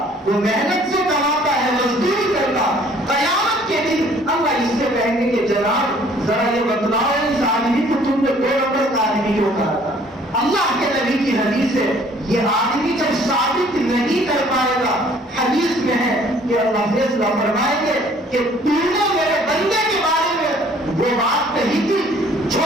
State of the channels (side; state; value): both; normal; correlation 0.57